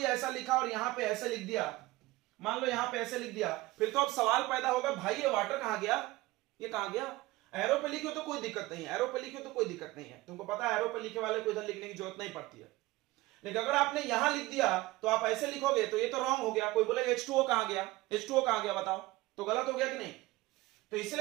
ऐसा लिखा और यहां पे ऐसे लिख दिया, मान लो यहां पे ऐसे लिख दिया, फिर तो अब सवाल पैदा होगा भाई ये वाटर कहां गया, ये कहां गया? एरो पे लिखे तो कोई दिक्कत नहीं है, एरो पे लिखे तो कोई दिक्कत नहीं है, तुमको पता है एरो पे लिखे वाले को इधर लिखने की जरूरत नहीं पड़ती है। लेकिन अगर आपने यहां लिख दिया तो आप ऐसे लिखोगे तो ये तो रॉन्ग हो गया, कोई बोले H2O कहां गया, H2O कहां गया बताओ, तो गलत हो गया कि नहीं? तो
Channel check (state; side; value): quieter; left; 19.2 dB